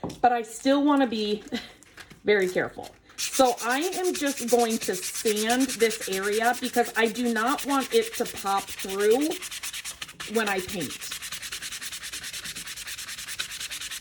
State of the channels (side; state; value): both; identical; correlation 1.00